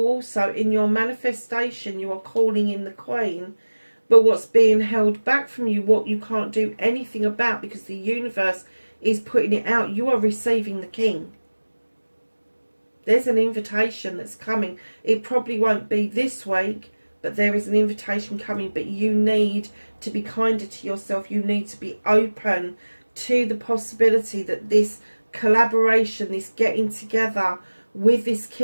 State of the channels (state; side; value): inverted; both; correlation -1.00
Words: also, in your manifestation, you are calling in the Queen. But what's being held back from you, what you can't do anything about because the universe is putting it out, you are receiving the King. There's an invitation that's coming. It probably won't be this week, but there is an invitation coming. But you need to be kinder to yourself. You need to be open to the possibility that this collaboration, this getting together with this